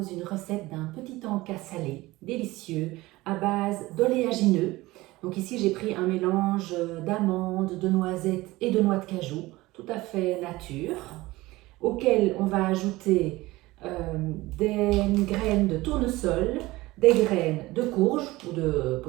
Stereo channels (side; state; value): left; quieter; 19.5 dB